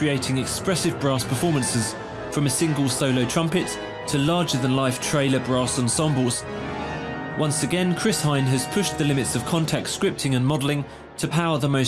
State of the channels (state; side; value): identical; both; correlation 1.00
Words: expressive brass performances, from a single solo trumpet to larger-than-life trailer brass ensembles. Once again, Chris Hein has pushed the limits of Kontakt scripting and modelling to power the